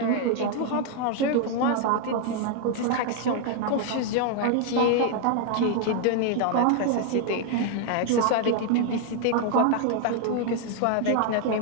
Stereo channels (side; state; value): both; different; correlation 0.00